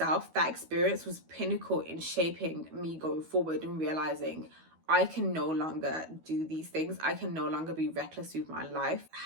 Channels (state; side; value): late; left; 12 ms